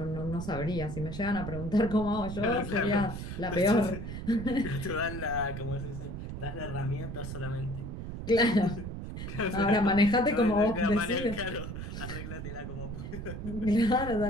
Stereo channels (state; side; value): noise; right; rumble, 7 dB below the sound